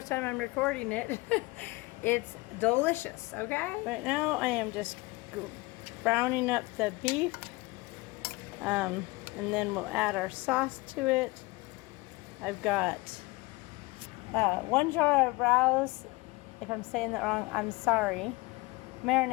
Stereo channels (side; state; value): right; quieter; 23.2 dB